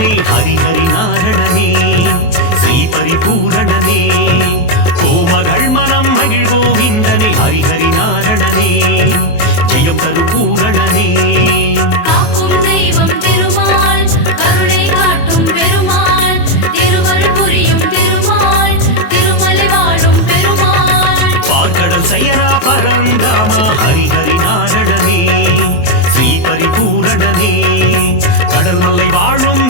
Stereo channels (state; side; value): late; right; 23 ms